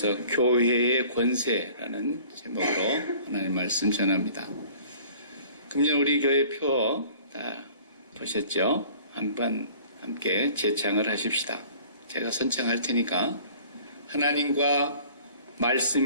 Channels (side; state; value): both; inverted; correlation -0.49